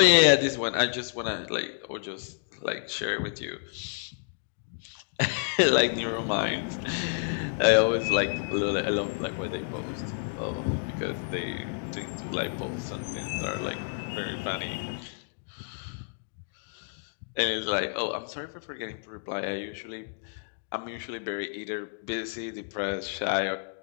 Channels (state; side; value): silent; right; digital silence